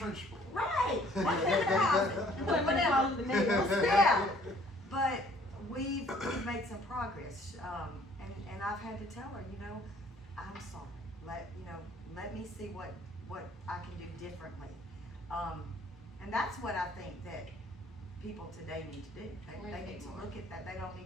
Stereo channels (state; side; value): normal; both; correlation 0.58